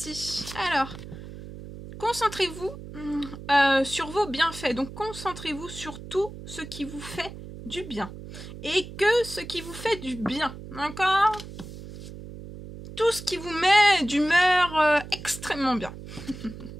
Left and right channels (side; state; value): right; noise; hum, 13 dB below the sound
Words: Alors, concentrez-vous sur vos bienfaits. Donc, concentrez-vous sur tout ce qui vous fait du bien. Et que ce qui vous fait du bien. D'accord? Tout ce qui vous met d'humeur extrêmement bien.